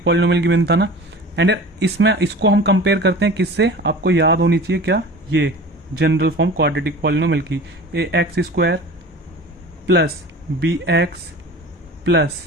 पॉलिनोमियल गिवन था ना। एंड इसमें इसको हम कंपेयर करते हैं किससे, आपको याद होनी चाहिए क्या, ये जनरल फॉर्म क्वाड्रेटिक पॉलिनोमियल की, A X square plus B X plus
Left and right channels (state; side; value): normal; both; correlation 0.38